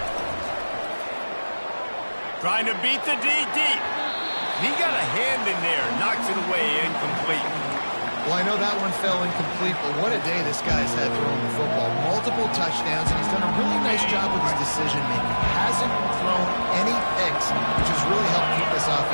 Trying to beat the D deep. He got a hand in there, knocks it away, incomplete. Well, I know that one fell incomplete, but what a day this guy's had throwing the football. Multiple touchdowns, and he's done a really nice job with his decision-making. Hasn't thrown any picks, which has really helped keep this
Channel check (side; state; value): both; inverted; correlation -1.00